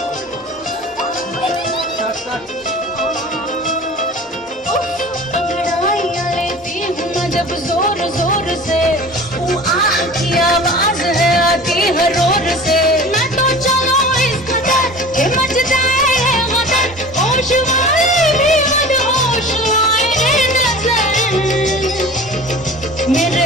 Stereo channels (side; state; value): both; normal; correlation 0.39